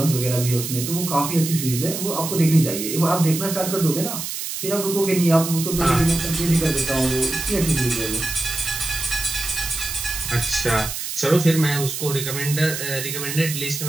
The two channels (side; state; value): right; noise; hiss, 5 dB below the sound